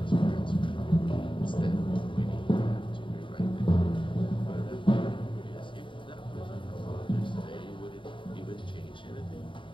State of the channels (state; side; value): late; right; 0.24 ms